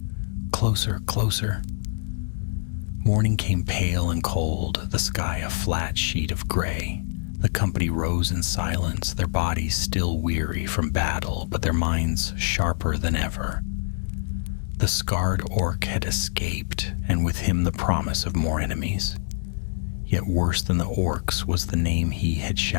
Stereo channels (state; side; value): silent; right; digital silence